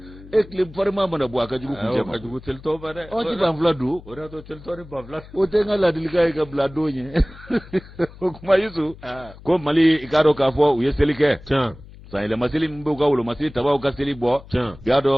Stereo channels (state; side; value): noise; left; hum, 19 dB below the sound